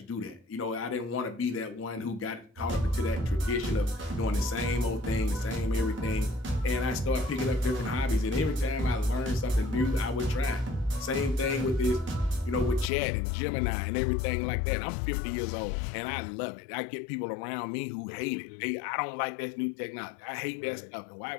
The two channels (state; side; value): drops out; right; at 12.9 s